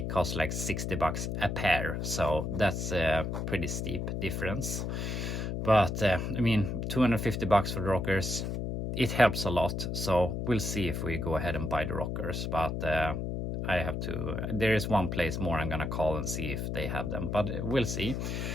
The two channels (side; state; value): left; noise; hum, 2 dB below the sound